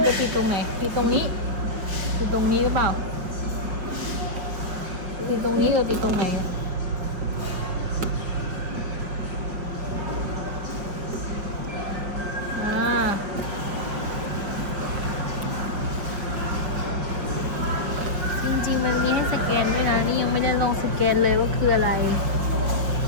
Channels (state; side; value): late; left; 5.7 ms